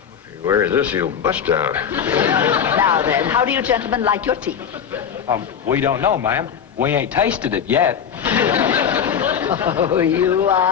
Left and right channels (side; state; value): right; quieter; 7.9 dB